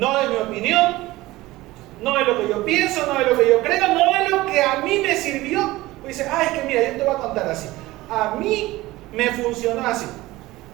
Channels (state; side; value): quieter; left; 18.5 dB